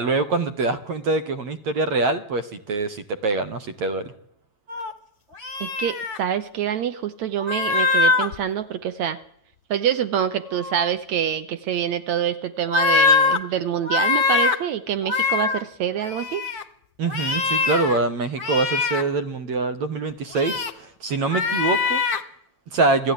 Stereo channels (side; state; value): left; late; 9.1 ms